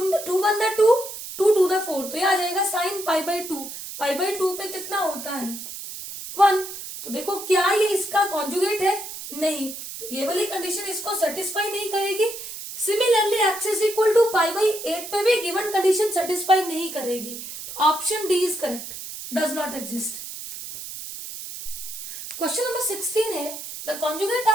2 2 2 4, तो ये आ जाएगा sign pi by 2, pi by 2 पे कितना होता है 1। तो देखो क्या ये इसका कॉन्जुगेट है, नहीं, तो ये वाली कंडीशन इसको सेटिस्फाई नहीं करेगी। Similarly x is equal to pi by 8 पे भी गिवन कंडीशन सेटिस्फाई नहीं करेगी, तो option D is correct, does not exist. Question number 16 है, the conjugate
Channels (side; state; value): right; noise; hiss, 10 dB below the sound